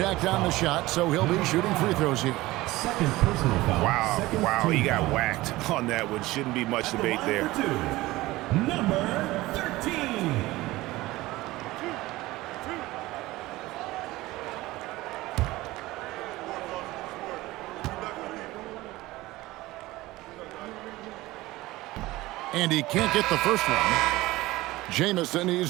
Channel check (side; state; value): left; quieter; 18.7 dB